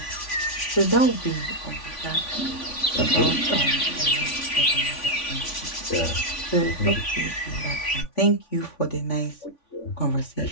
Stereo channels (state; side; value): late; right; 3.5 ms